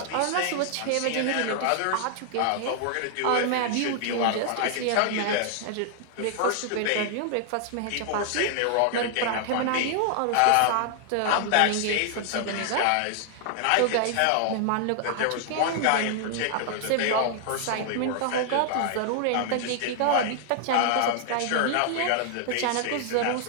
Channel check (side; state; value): both; different; correlation 0.00